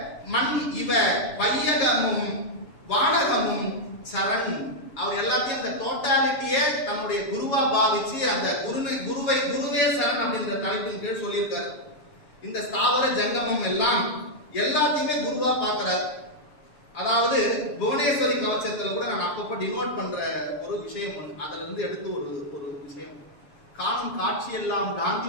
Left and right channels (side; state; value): right; late; 7.1 ms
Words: மண் இவ பையகமும் வானகமும் சரண். அவர் எல்லாத்தையும் அந்த டோட்டாலிட்டியே தன்னுடைய குருவா பாவிச்சு அந்த குருவே சரண் அப்படின்ற தலைப்பின் கீழ் சொல்லியிருக்காரு. இந்த ஸ்தாவர ஜங்கமம் எல்லாம் எல்லாத்தையுமே குருவா பார்க்கிறார். அதாவது புவனேஸ்வரி கவச்சத்துல கூட நான் அப்பப்போ டினோட் பண்ற ஒரு விஷயம் ஒன்று, அதுல இருந்து எடுத்து ஒரு விஷயம். காணும் காட்சியெல்லாம்